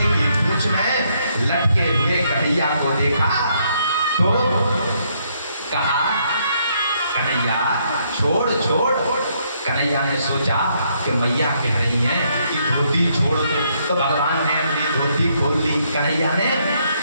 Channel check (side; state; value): both; inverted; correlation -0.72